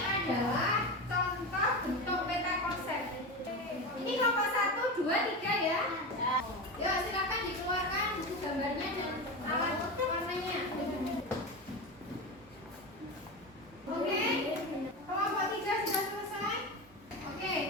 adalah contoh bentuk peta konsep. Ini kelompok 1, 2, 3 ya. Ya, silakan dikeluarkan gambarnya dan alat warnanya. Oke, kelompok 3 sudah selesai. Oke,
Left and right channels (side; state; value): both; normal; correlation 0.22